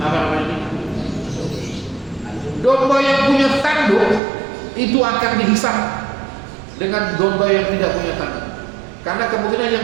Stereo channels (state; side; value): drops out; left; at 4.2 s